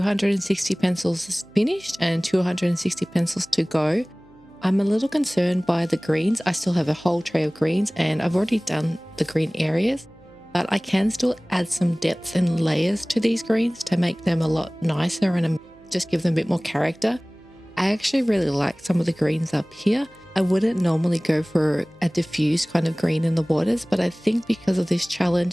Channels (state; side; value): noise; right; hum, 28 dB below the sound